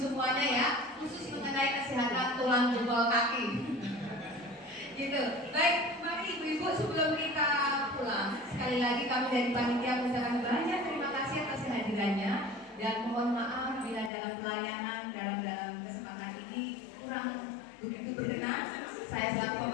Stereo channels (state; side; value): drops out; right; at 14.1 s